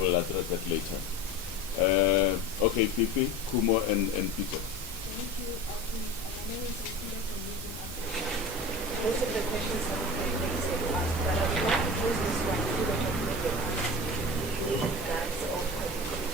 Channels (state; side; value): normal; both; correlation 0.33